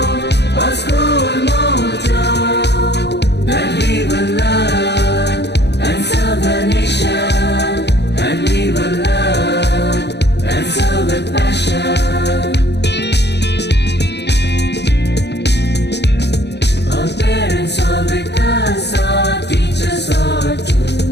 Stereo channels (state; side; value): late; right; 0.50 ms